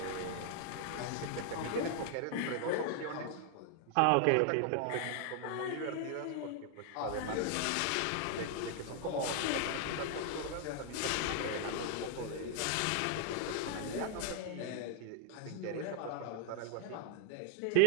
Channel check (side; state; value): both; different; correlation 0.00